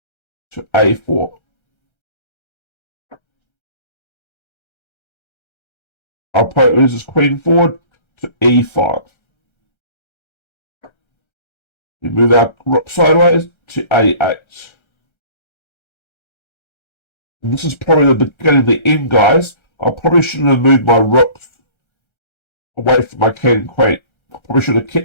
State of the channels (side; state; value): right; late; 1.3 ms